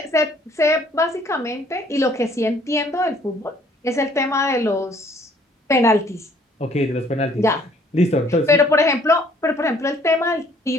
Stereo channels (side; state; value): both; normal; correlation 0.60